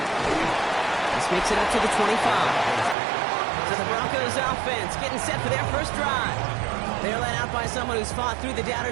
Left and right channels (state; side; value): drops out; left; at 3.0 s